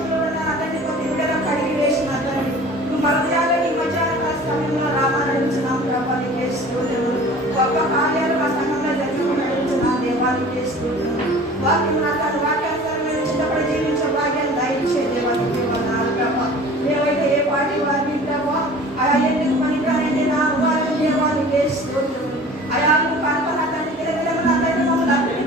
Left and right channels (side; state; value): both; normal; correlation 0.44